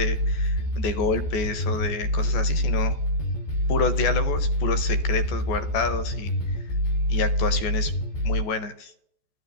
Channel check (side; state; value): right; late; 14 ms